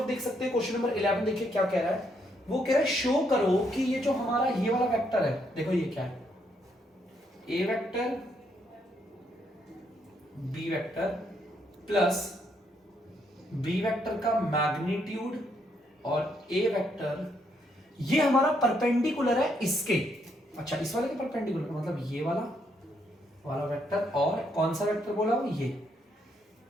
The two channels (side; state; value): both; normal; correlation 0.74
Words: देख सकते हैं क्वेश्चन नंबर 11 देखिए क्या कह रहा है, वो कह रहा है शो करो कि ये जो हमारा ये वाला वेक्टर है, देखो ये क्या है, A vector B vector plus B vector का मैग्नीट्यूड और ए वेक्टर, ये हमारा परपेंडिकुलर है इसके, अच्छा इस वाले के परपेंडिकुलर मतलब ये वाला वेक्टर, और कौन सा वेक्टर बोला वो, ये